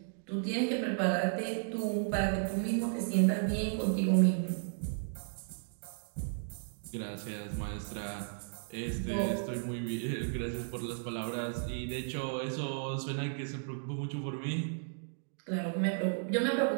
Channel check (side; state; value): left; silent; digital silence